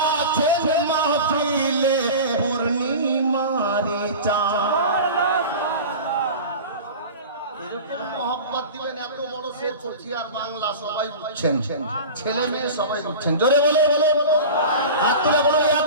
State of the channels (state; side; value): inverted; both; correlation -0.33